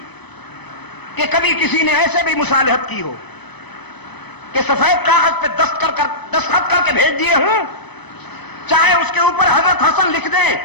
کہ کبھی کسی نے ایسے بھی مصالحت کی ہو کہ سفید کاغذ پہ دستخط کر کے بھیج دیے ہوں، چاہے اس کے اوپر حضرت حسن لکھ دیں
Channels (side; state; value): right; late; 0.99 ms